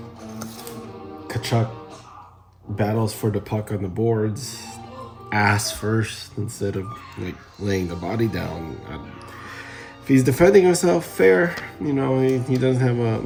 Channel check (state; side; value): identical; both; correlation 1.00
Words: Kachuk battles for the puck on the boards, ass first instead of like laying the body down. If he's defending himself, fair. He doesn't